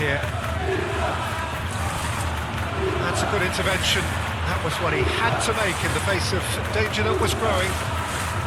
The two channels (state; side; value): identical; both; correlation 1.00